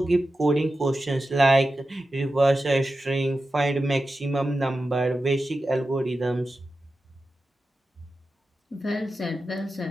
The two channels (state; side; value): normal; both; correlation 0.92